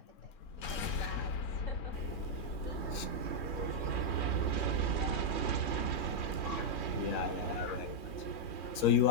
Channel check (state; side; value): late; right; 3.7 ms